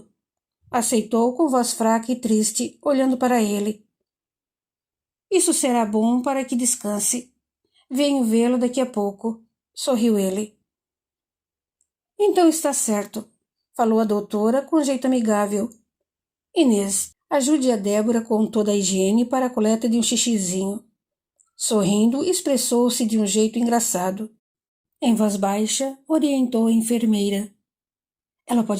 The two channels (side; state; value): both; identical; correlation 1.00